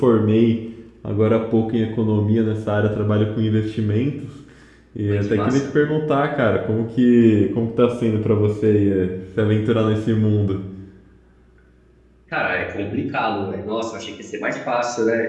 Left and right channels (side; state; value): both; identical; correlation 1.00